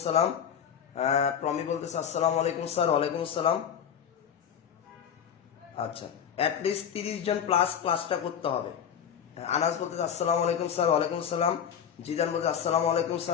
প্রমি বলতেছে আসসালামু আলাইকুম স্যার, ওয়ালাইকুম আসসালাম। আচ্ছা, অ্যাটলিস্ট 30 জন প্লাস ক্লাসটা করতে হবে। আনাস বলতেছে আসসালামু আলাইকুম স্যার, ওয়ালাইকুম আসসালাম। জিদান বলতেছে আসসালামু আলাইকুম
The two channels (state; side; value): quieter; right; 8.4 dB